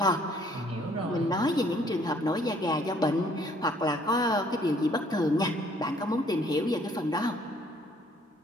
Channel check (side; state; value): both; normal; correlation 0.61